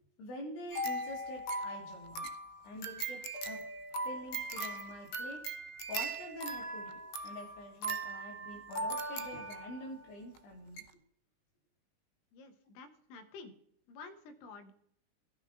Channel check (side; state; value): right; late; 19 ms